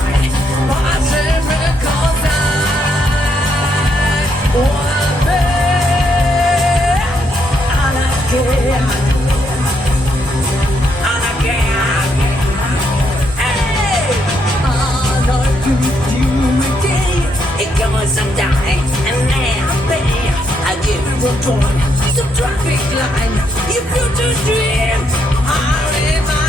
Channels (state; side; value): normal; both; correlation 0.75